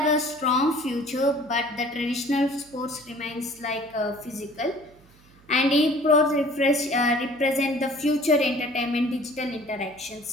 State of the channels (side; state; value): right; noise; hum, 28 dB below the sound